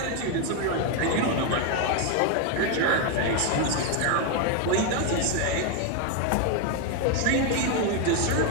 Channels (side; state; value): both; different; correlation 0.01